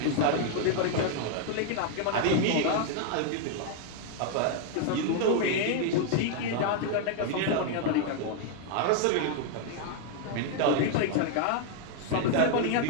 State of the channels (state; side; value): different; both; correlation 0.00